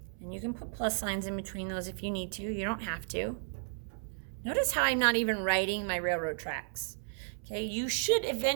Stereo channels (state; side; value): silent; left; 55 dB below the other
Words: And you can put plus signs in between those if you need to. You don't have to. Notice how I'm not even writing my railroad tracks. Okay, you should